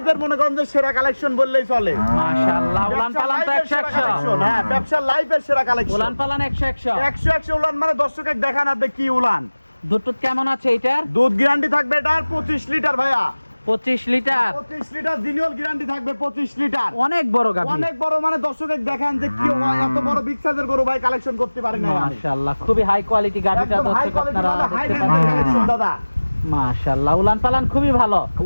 মনে করেন যে সেরা কালেকশন বললেই চলে। মাশাআল্লাহ, উলান পালান তো 100 হ্যাঁ ব্যবসার লাইফের সেরা কালেকশন। উলান পালান 100 100 উলান, মানে দর্শককে দেখান আপনি কি উলান। দুধ কেমন আছে এটার? দুধ গ্যারান্টি থাকবে এটার 25 লিটার ভাইয়া। 25 লিটার। 25 লিটার জিনিয়াল গ্যারান্টি থাকবে 25 লিটার। অনেক বড় গাভি, অনেক বড়, মানে দর্শককে দেখান যে কি এত বড় বিগ সাইজের গরু ভাই কালেকশন করতে পারি না আমি। মাশাআল্লাহ, খুবই হাই কোয়ালিটি গাভিটা একদম হাই দর্শক কোয়ালিটি, আপনারা মানে হাই দেখতে রেঞ্জের কালেকশন পাচ্ছেন। দাদা। মাশাআল্লাহ, উলান পালান খুবই ভালো।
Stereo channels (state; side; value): inverted; both; correlation -1.00